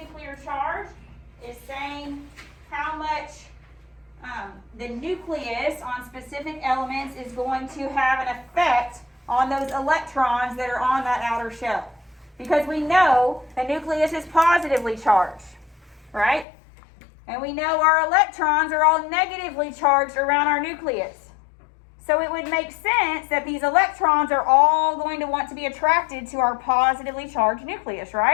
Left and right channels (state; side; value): drops out; right; at 16.4 s